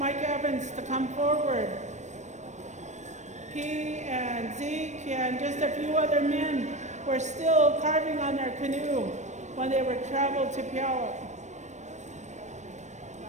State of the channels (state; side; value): late; left; 0.34 ms